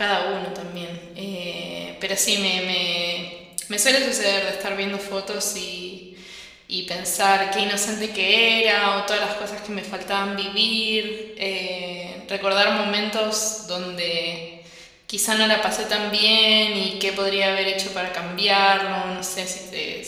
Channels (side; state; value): both; identical; correlation 1.00